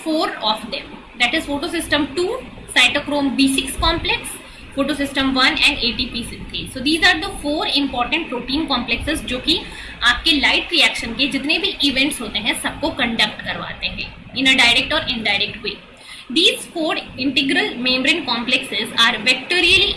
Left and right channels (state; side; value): identical; both; correlation 1.00